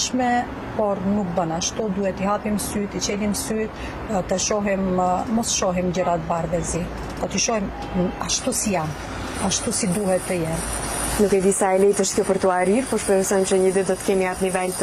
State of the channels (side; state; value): both; identical; correlation 1.00